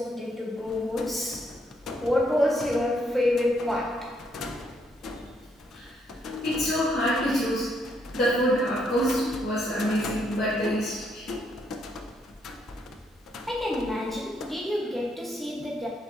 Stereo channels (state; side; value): normal; both; correlation 0.74